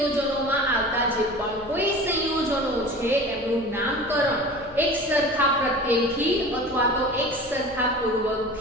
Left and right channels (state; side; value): noise; right; hum, 21 dB below the sound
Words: આવતા જે પણ કોઈ સંયોજનો છે એનું નામકરણ એક સરખા પ્રત્યયથી અથવા તો એક સરખા